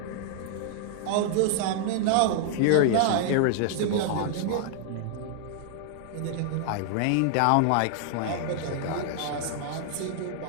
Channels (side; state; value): both; different; correlation 0.00